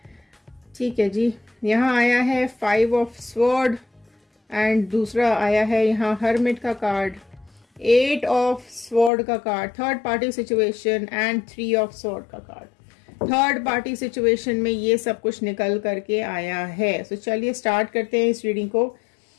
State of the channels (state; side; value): drops out; right; at 9.1 s